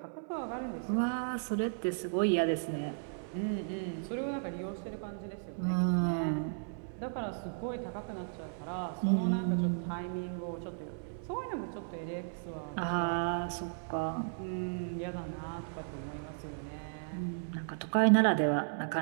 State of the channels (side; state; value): left; silent; 54 dB below the other